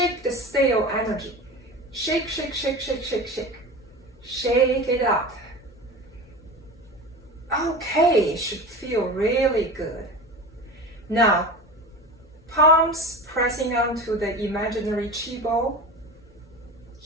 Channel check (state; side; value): normal; both; correlation 0.31